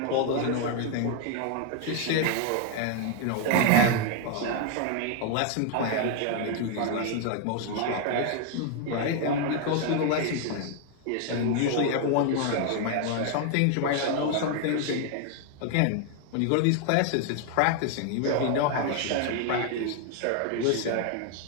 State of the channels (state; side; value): different; both; correlation 0.00